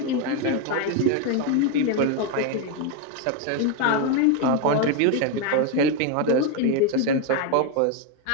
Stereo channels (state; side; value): different; both; correlation 0.02